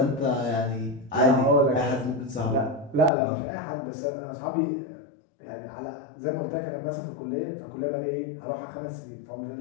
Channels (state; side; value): drops out; right; at 3.1 s